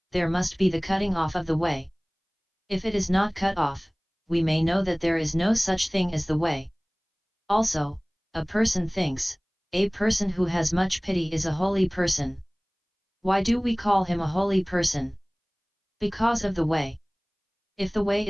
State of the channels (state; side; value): identical; both; correlation 1.00